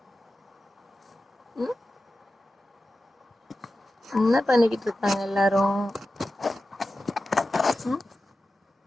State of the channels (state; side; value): normal; both; correlation 0.93